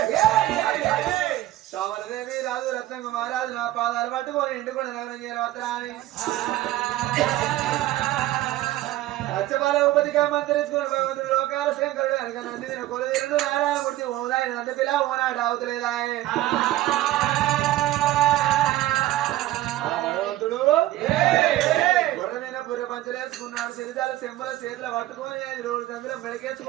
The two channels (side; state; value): left; quieter; 15.4 dB